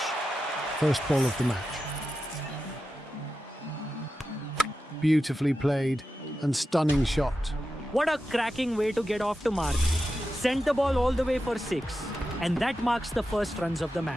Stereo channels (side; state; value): both; normal; correlation 0.91